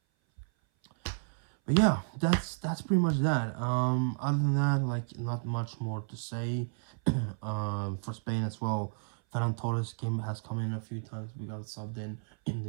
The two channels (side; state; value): left; silent; 56 dB below the other